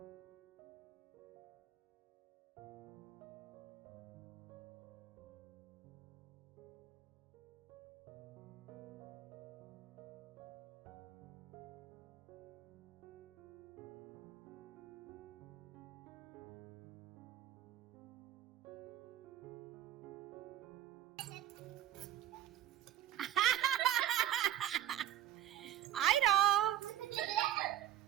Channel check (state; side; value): quieter; left; 12.1 dB